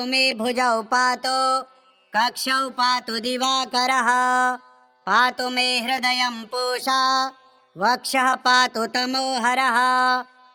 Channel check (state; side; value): identical; both; correlation 1.00